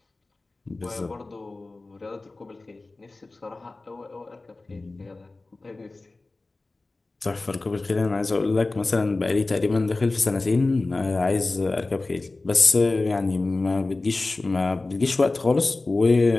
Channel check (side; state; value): right; quieter; 3.3 dB